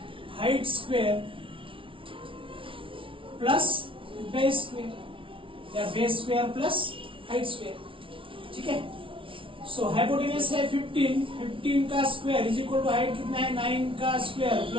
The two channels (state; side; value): late; left; 0.25 ms